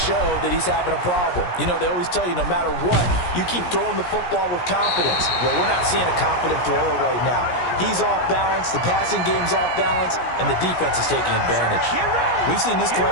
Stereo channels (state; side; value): late; right; 17 ms